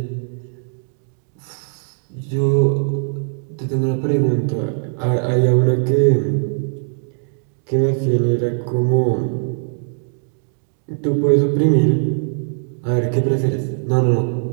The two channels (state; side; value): silent; left; digital silence